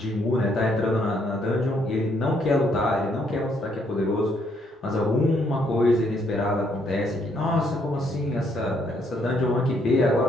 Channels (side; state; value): both; normal; correlation 0.71